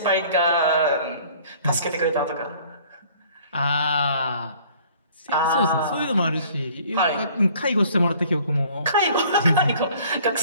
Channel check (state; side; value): inverted; both; correlation -0.54